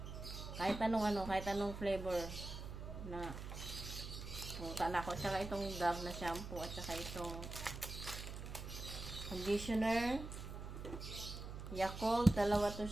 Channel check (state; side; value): noise; right; hum, 8 dB below the sound